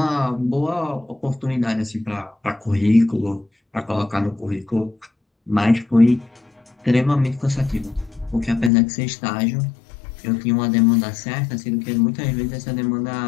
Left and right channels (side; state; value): right; drops out; at 8.7 s